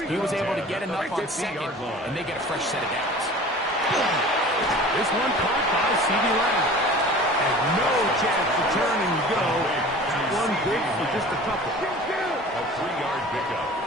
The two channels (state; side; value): normal; both; correlation 0.42